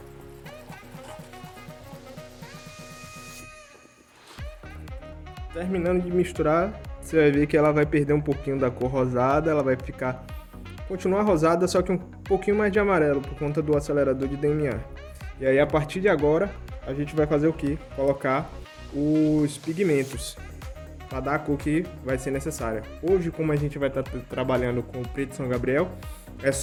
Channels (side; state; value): both; identical; correlation 1.00